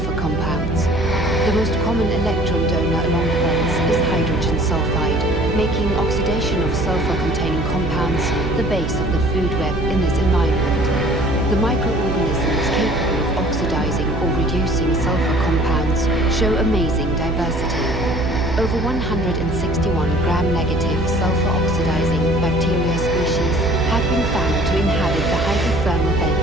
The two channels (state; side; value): noise; right; hum, 4 dB below the sound